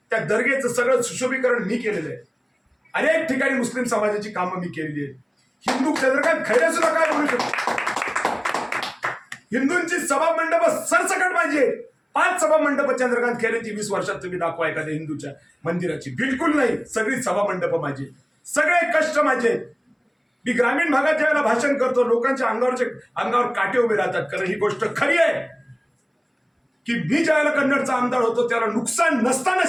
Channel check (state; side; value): identical; both; correlation 1.00